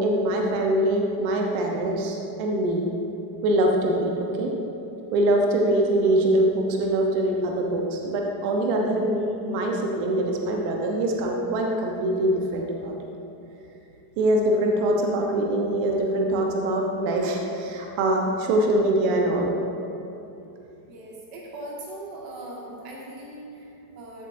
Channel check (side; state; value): left; late; 5.2 ms